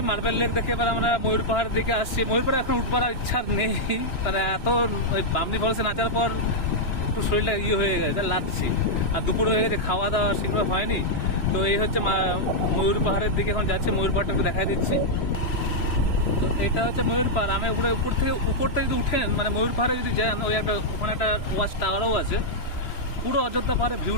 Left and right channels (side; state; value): right; late; 2.9 ms